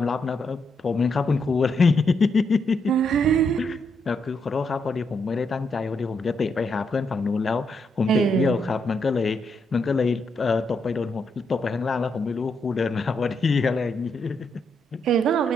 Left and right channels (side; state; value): both; normal; correlation 0.79